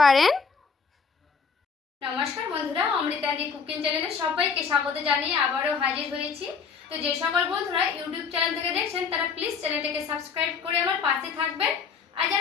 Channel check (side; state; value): right; quieter; 5.8 dB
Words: নমস্কার বন্ধুরা, অমৃতাদি কুকিং চ্যানেলে সবাইকে স্বাগত জানিয়ে আবারও হাজির হয়েছি। তো যে সকল বন্ধুরা ইউটিউব চ্যানেল থেকে দেখছেন তারা প্লিজ চ্যানেলটাকে সাবস্ক্রাইব করে আমার পাশে থাকবেন, আর